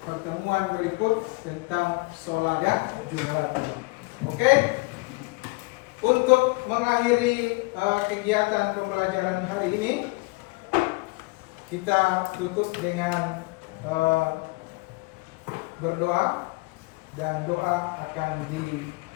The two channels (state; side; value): quieter; right; 26.1 dB